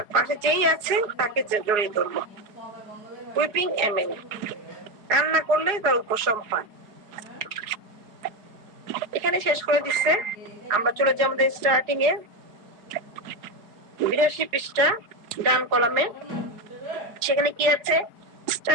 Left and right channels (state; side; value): late; left; 4.8 ms